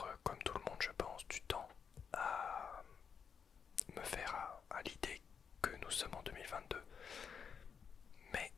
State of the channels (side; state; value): right; quieter; 6.6 dB